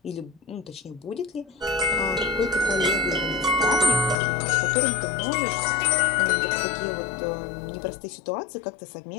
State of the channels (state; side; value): drops out; right; at 4.2 s